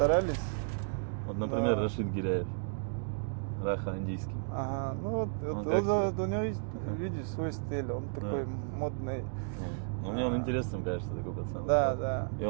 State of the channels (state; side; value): silent; left; digital silence